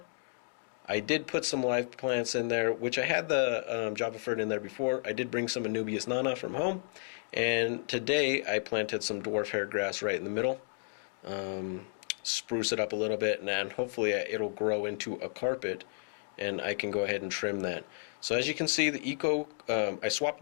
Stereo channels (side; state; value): right; silent; digital silence